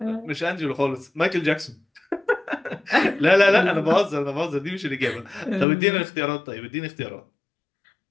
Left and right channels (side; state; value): right; drops out; at 5.7 s